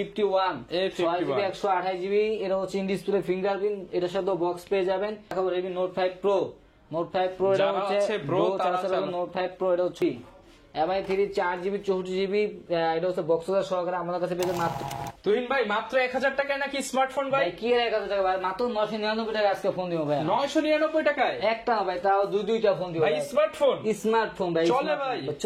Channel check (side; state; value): both; identical; correlation 1.00